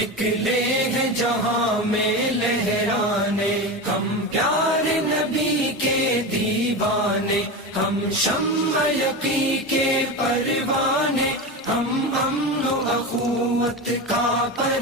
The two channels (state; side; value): normal; both; correlation 0.22